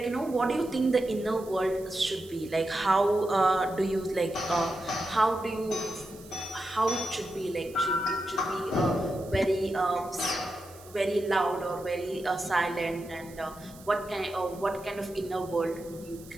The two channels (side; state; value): right; noise; hiss, 22 dB below the sound